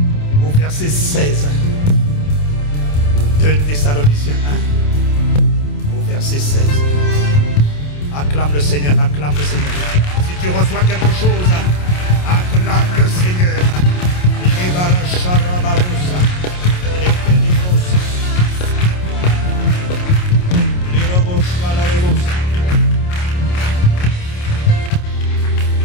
1 au verset 16. 2 Thessaloniciens 1 au verset 16. Acclame le Seigneur, acclame le Seigneur. Si tu reçois quelque chose, acclame le Seigneur.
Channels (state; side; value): late; right; 28 ms